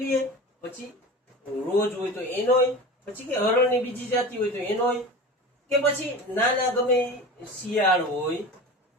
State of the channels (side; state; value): both; normal; correlation 0.32